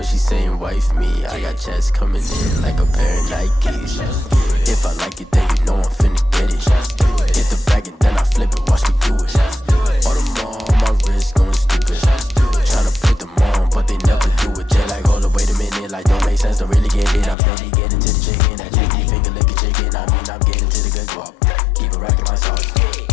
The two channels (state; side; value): drops out; right; at 17.4 s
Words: she saying wife me. I got checks coming in like a pair of Nikes. If I like it, then you know I'm finna get it. Hit the bag and then I flip it, watch me do it. All the more on my wrist going stupid. Tryna put them on, but they never do it. They like, hold up, wait a minute, like don't make sense, don't really get it. I'm steady getting to the chicken, that JT finger licking chicken. I mean, I'm getting to the good guap. Keep a rack in my socks.